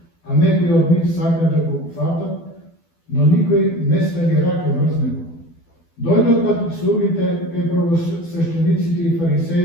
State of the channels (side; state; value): right; late; 12 ms